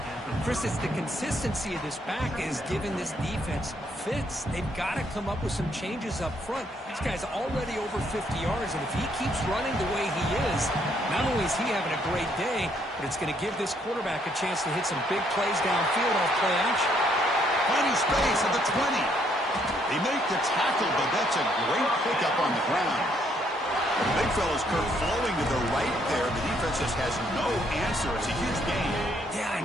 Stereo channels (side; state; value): both; normal; correlation 0.70